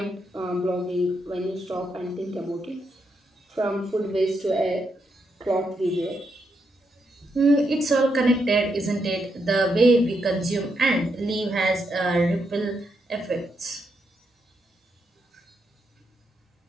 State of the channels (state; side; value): normal; both; correlation 0.81